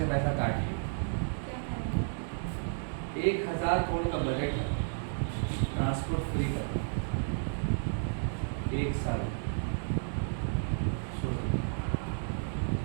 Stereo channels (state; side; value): silent; left; digital silence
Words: पैसा काट लिया। 1000 करोड़ का बजट है ट्रांसपोर्ट फ्री का, 1 साल।